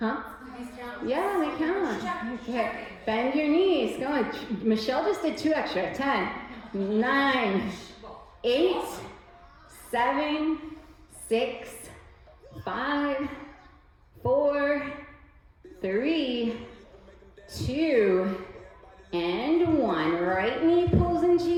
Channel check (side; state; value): both; identical; correlation 1.00